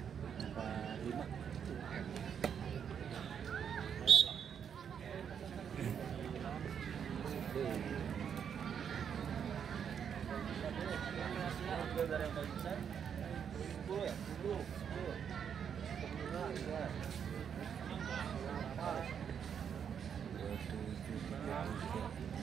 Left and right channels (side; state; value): left; quieter; 7.8 dB